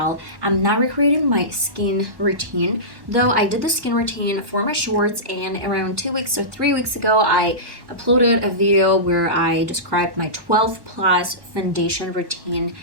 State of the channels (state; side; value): late; left; 1.1 ms